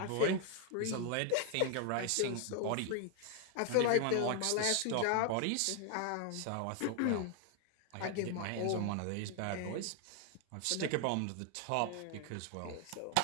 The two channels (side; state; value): both; different; correlation 0.00